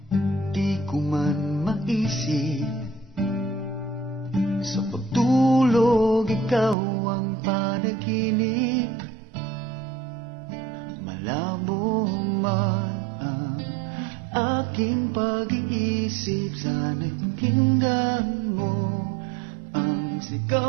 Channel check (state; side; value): drops out; left; at 6.8 s